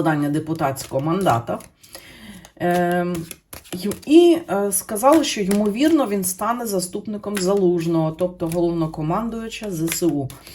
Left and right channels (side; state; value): both; identical; correlation 1.00